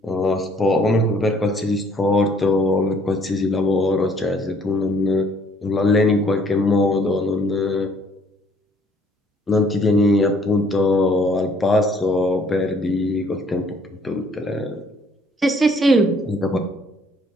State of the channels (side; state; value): both; normal; correlation 0.61